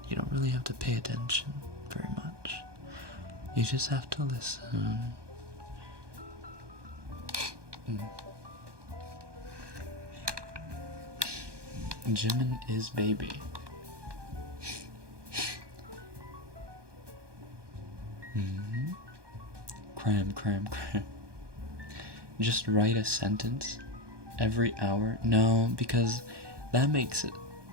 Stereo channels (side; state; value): left; late; 1.2 ms